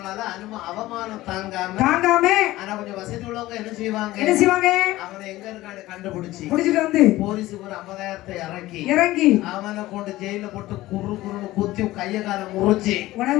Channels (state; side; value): quieter; right; 17.1 dB